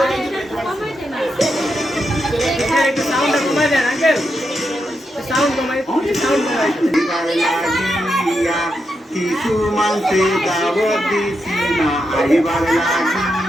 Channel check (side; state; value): both; normal; correlation 0.85